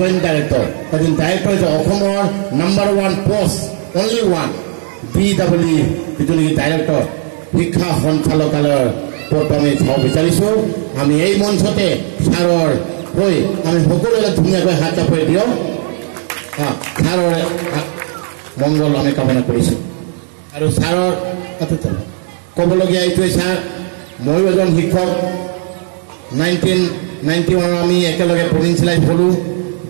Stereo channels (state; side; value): silent; left; 55 dB below the other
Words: ডাইৰেক্টৰ, এদিন ডাইৰেক্টৰ হৈছে অসমৰ #1 পোষ্ট অনলি ওৱান BEE যিটো নেকি ডাইৰেক্টৰ শিক্ষা সঞ্চালকালয়ৰ পদটো আমি চাব বিচাৰিছোঁ। আমি এই মঞ্চতে ছাৰৰ হৈ আমি সকলোৱে ধুনীয়াকৈ হাত চাপৰি দিওঁ। ছাৰৰ মংগল আমি কামনা কৰিছোঁ। আৰু ছাৰৰ ক'বলগীয়া এইটোৱে ছাৰ, ময়ো এজন শিক্ষক। 1991 আমি একেলগে প্ৰভিঞ্চিয়েলাইজ হ'লোঁ।